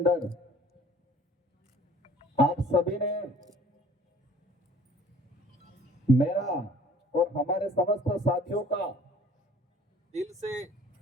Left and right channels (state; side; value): normal; both; correlation 0.52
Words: आप सभी ने मेरा और हमारे समस्त साथियों का दिल से